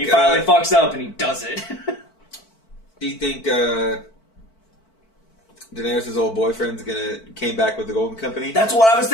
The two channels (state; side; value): late; right; 4.5 ms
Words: finally fucks up and he does it. Do you think Daenerys' old boyfriend's came back with the Golden Company? That's what I was